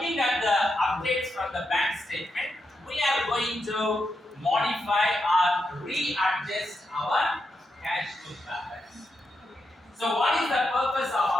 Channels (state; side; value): normal; both; correlation 0.85